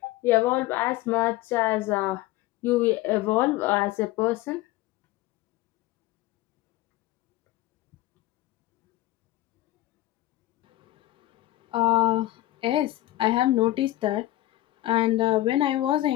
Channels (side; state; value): right; quieter; 16.2 dB